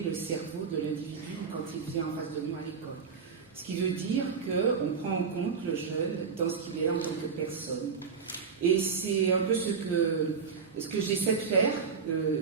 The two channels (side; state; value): left; quieter; 5.8 dB